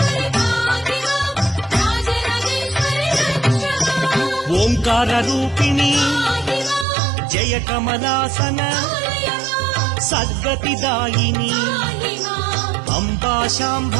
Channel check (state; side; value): drops out; left; at 6.9 s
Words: ఓంకార రూపిణి జయ కమలాసన సద్గతిదాయిని అంబా